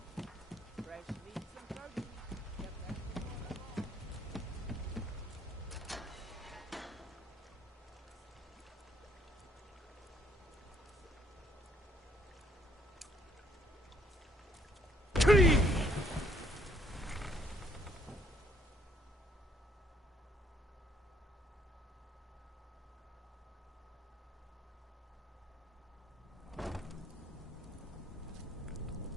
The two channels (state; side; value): normal; both; correlation 0.67